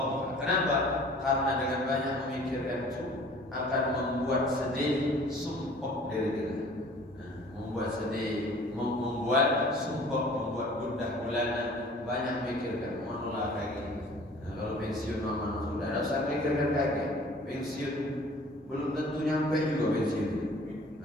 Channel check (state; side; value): normal; both; correlation 0.49